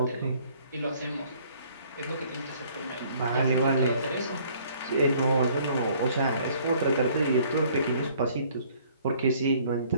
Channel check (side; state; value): both; inverted; correlation -0.59